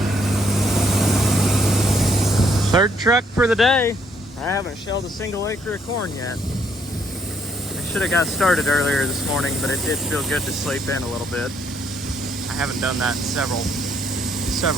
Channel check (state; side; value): normal; both; correlation 0.69